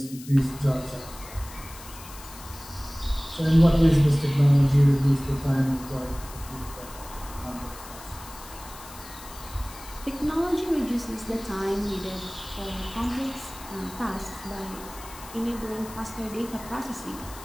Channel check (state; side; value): noise; left; hiss, 16 dB below the sound